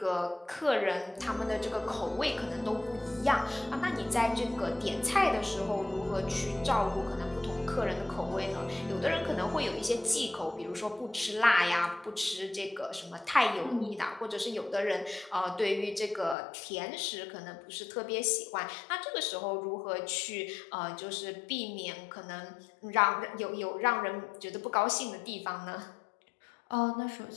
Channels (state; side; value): drops out; right; at 16.4 s